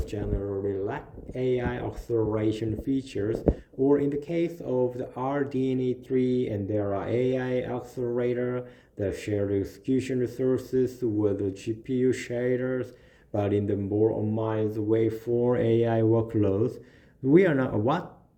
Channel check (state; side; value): identical; both; correlation 1.00